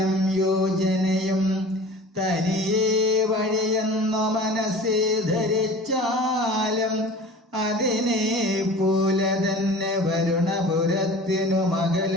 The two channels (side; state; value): both; normal; correlation 0.40